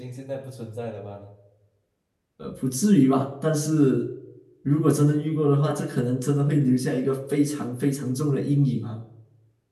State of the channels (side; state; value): both; identical; correlation 1.00